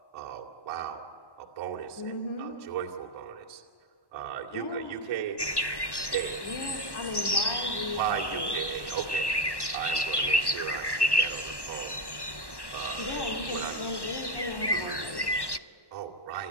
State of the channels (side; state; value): right; late; 1.1 ms